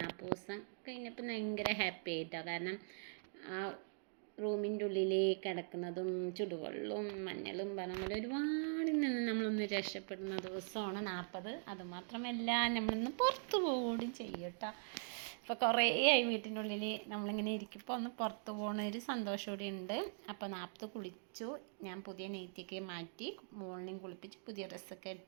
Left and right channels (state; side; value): silent; left; digital silence